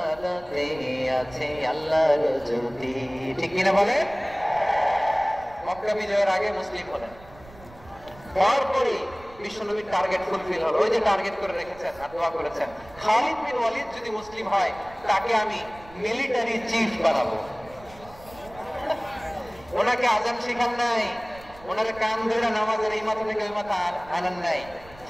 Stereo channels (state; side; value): noise; right; rumble, 21 dB below the sound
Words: আছে আল্লাহর জ্যোতি। ঠিক কিনা বলে? মক্কা বিজয়ের আগে মুসলিম হলেন, তারপরে বিশ্বনবীর টার্গেট ফুলফিল হলো। ওই যে টার্গেট করে রেখেছেন আর দোয়া করেছেন, খালিদ বিন ওয়ালিদ যদি মুসলিম হয় তাকে আমি মিলিটারি চিফ বানাবো। ওনাকে আজান শিখান নাই, ওনারে কান ধরে নামাজের এই মাথা থেকে ওই মাথা আনান নাই,